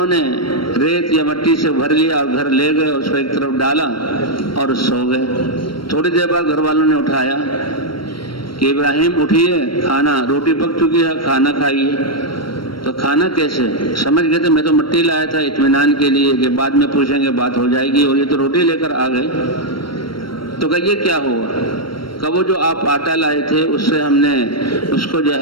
نے ریت یا مٹی سے بھر لیا اور گھر لے گئے، اس کو ایک طرف ڈالا اور سو گئے۔ تھوڑی دیر بعد گھر والوں نے اٹھایا کہ ابراہیم اٹھیے، کھانا روٹی پک چکی ہے، کھانا کھائیے۔ تو کھانا کیسے؟ سمجھ گئے تھے میں تو مٹی لایا تھا اطمینان کے لیے کہ بعد میں پوچھیں گے، بات ہو جائے گی، اور یہ تو روٹی لے کر آ گئے۔ تو کہ یہ کیا ہوا؟ کہ وہ جو آپ آٹا لائے تھے اس سے ہم نے اس کو جو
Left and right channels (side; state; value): right; late; 0.73 ms